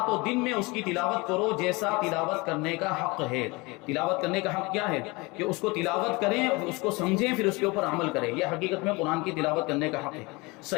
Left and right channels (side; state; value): right; quieter; 25.2 dB